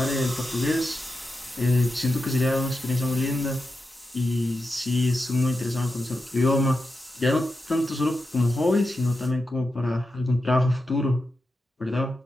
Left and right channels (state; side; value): normal; both; correlation 0.89